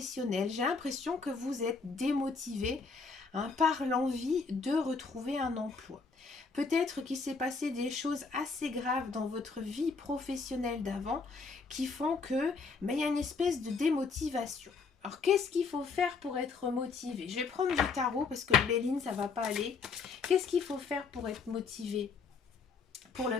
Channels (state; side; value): quieter; right; 4.8 dB